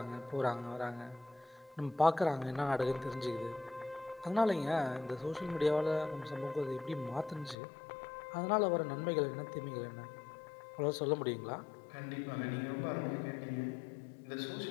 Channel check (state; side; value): drops out; right; at 7.6 s